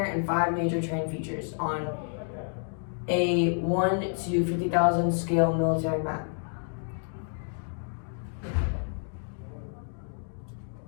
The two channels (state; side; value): silent; right; 58 dB below the other